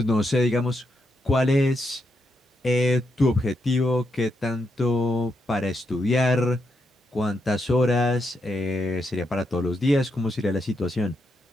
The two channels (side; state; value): both; normal; correlation 0.82